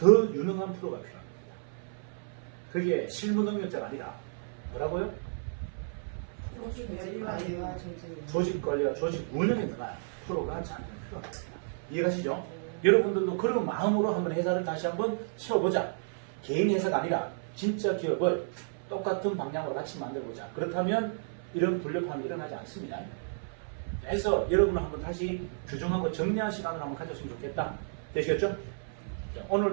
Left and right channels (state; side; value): silent; left; 57 dB below the other